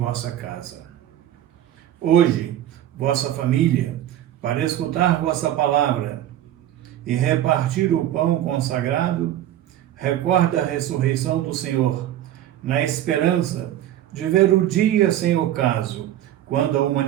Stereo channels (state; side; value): quieter; left; 12.3 dB